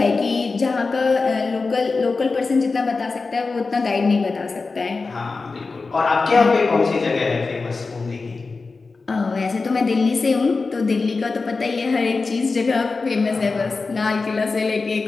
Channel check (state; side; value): quieter; right; 4.1 dB